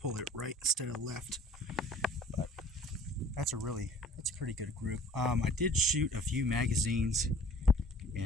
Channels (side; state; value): both; normal; correlation 0.49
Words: it right instead of left, but that's a pretty good group. I did shoot a few magazines,